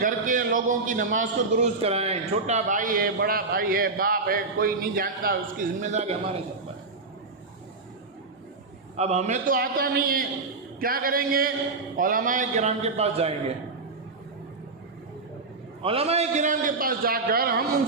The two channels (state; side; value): quieter; left; 3.9 dB